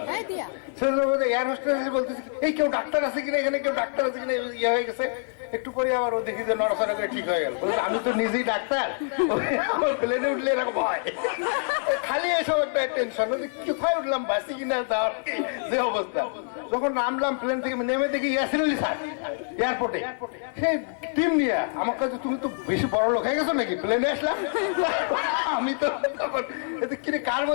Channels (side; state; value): right; silent; digital silence